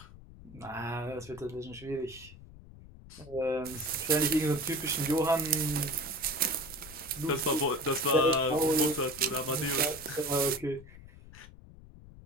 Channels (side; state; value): left; noise; rumble, 19 dB below the sound